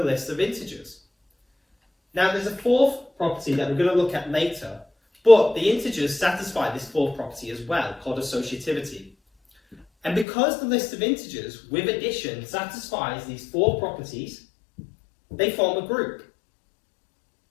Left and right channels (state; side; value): drops out; right; at 10.2 s